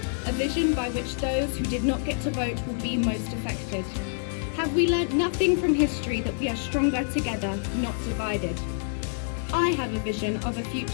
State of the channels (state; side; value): silent; right; digital silence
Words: A vision by which those who did not get to vote will be most affected. Have we learnt nothing from history that we are stronger together, not divided? I have a vision of a